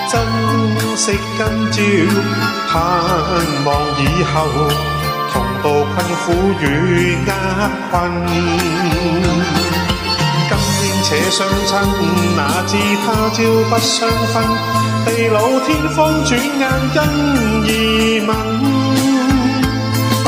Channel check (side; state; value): both; identical; correlation 1.00